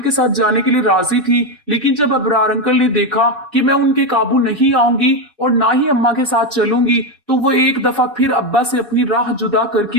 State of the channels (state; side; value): normal; both; correlation 0.10